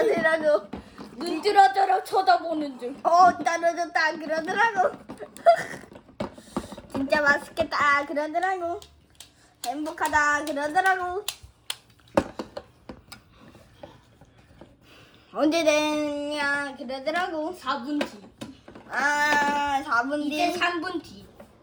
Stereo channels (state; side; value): identical; both; correlation 1.00